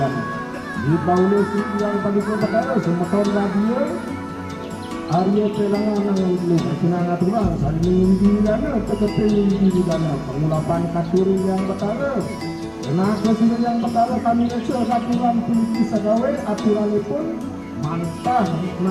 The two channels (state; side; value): identical; both; correlation 1.00